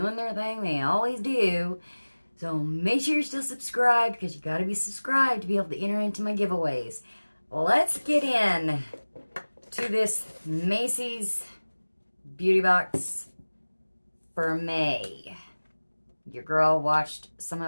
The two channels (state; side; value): inverted; both; correlation -1.00